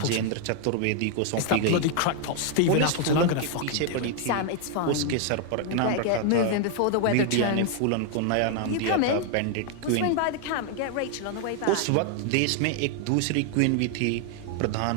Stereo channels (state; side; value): different; both; correlation 0.00